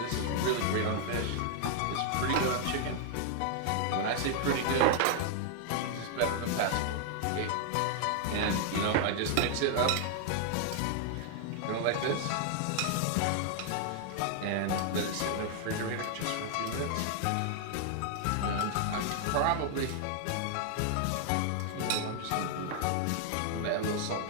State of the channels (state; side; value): different; both; correlation 0.00